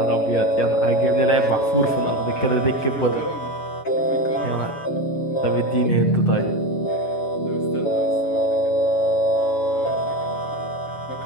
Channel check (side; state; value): right; late; 7.1 ms